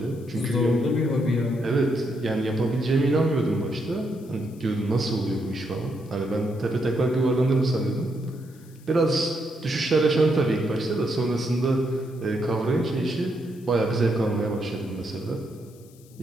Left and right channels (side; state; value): left; noise; hiss, 27 dB below the sound